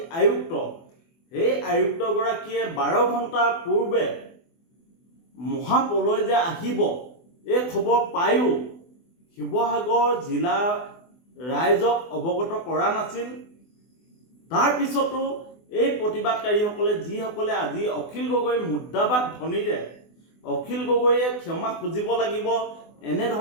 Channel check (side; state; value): right; late; 24 ms